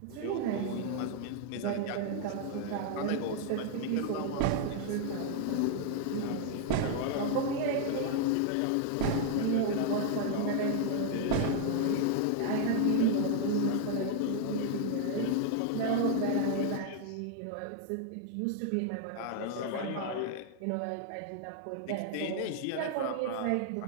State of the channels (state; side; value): different; both; correlation 0.00